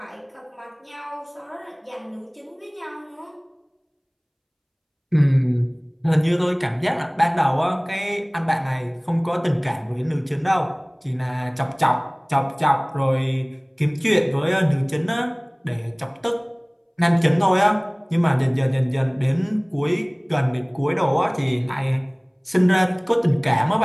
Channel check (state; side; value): identical; both; correlation 1.00